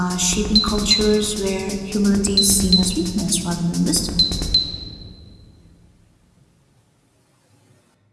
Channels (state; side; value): identical; both; correlation 1.00